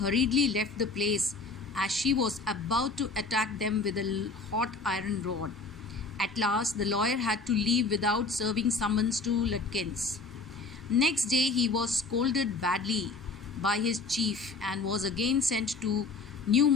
left the place as she was about to attack them with a hot iron rod. At last the lawyer had to leave without serving summons to Lutkins. Next day he was scolded badly by his chief and was again sent to New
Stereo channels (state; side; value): quieter; right; 3.7 dB